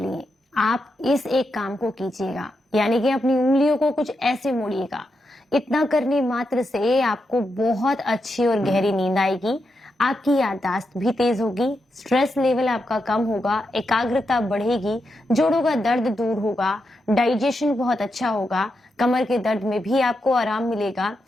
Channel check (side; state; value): both; normal; correlation 0.85